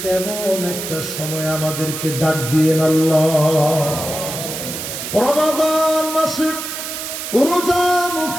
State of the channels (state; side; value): noise; right; hiss, 6 dB below the sound